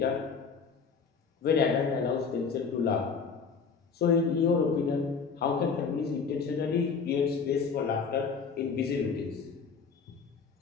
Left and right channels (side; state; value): right; quieter; 5.6 dB